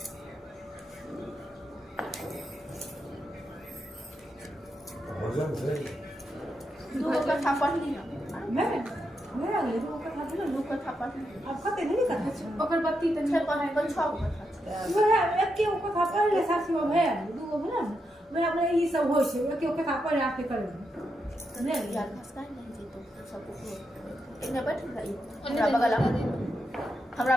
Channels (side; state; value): both; normal; correlation 0.84